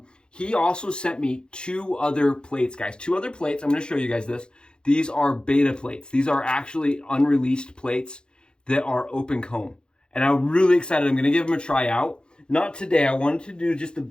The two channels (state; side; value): late; right; 0.049 ms